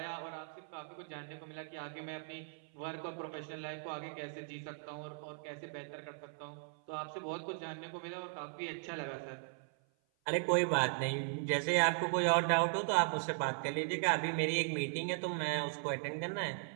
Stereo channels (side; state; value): left; silent; 52 dB below the other